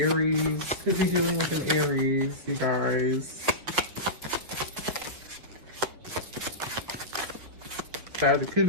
Could be dealing with an Aries, you guys. Could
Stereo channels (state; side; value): late; left; 5.4 ms